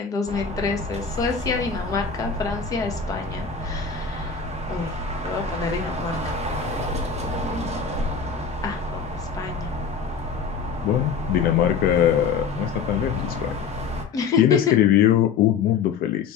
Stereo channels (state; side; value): quieter; right; 6.2 dB